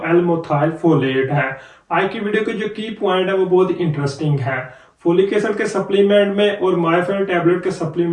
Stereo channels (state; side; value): identical; both; correlation 1.00